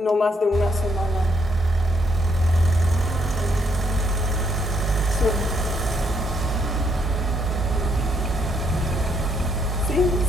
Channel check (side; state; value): both; normal; correlation 0.73